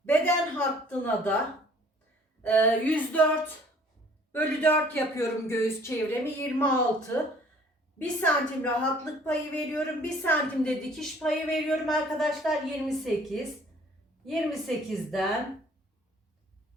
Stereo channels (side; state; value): both; normal; correlation 0.55